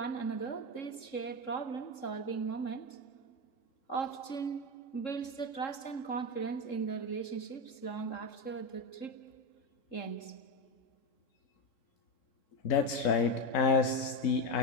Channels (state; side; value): late; right; 3.6 ms